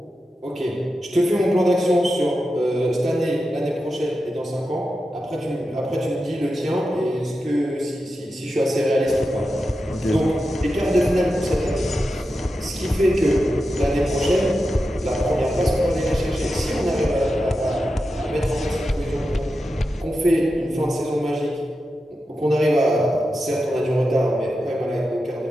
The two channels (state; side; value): normal; both; correlation 0.90